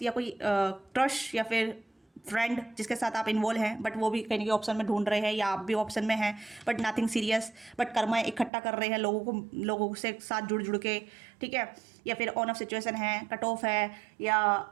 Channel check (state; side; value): drops out; left; at 8.5 s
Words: या कोई क्रश, या फिर फ्रेंड जिसके साथ आप इन्वॉल्व हैं, बट वो भी कहीं ना ऑप्शन में ढूंढ रहे हैं, या आप भी ऑप्शन में हैं, but nothing serious, but Karma इकट्ठा कर रहे हैं लोगों से साथ जुड़ के, ठीक है। या फिर ऑन ऑफ सिचुएशन है, कट ऑफ है, या